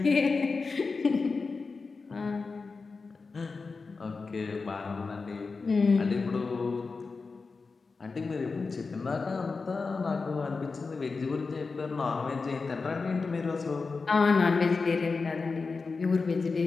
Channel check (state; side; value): quieter; right; 4.3 dB